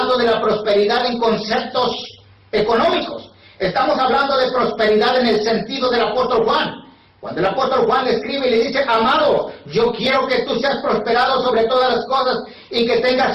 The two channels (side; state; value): both; identical; correlation 1.00